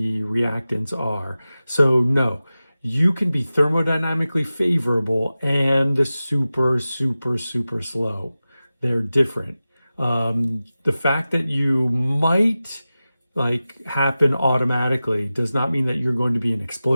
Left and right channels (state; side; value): inverted; both; correlation -0.95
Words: are. So no, you can be thermodynamically favorable and super, super, super slow. They're different. The fact that you might happen automatically does not mean that you're going to be an